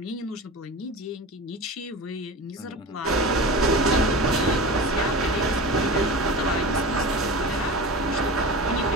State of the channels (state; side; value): normal; both; correlation 0.30